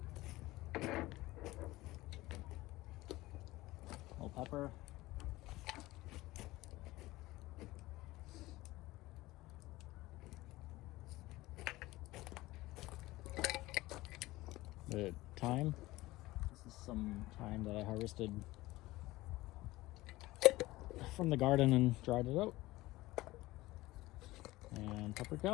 A little pepper. The thyme. This is some thyme that I harvested from the garden and dried it out. And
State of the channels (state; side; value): quieter; right; 18.6 dB